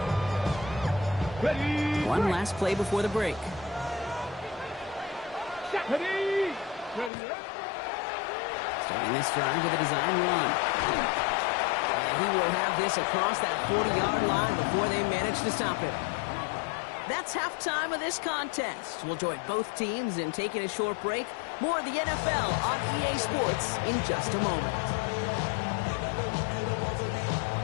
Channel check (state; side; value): drops out; right; at 7.1 s